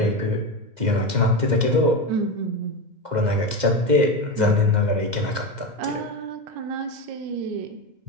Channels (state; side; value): late; left; 2.1 ms